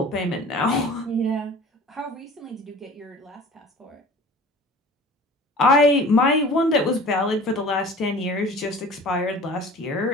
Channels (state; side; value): normal; both; correlation 0.43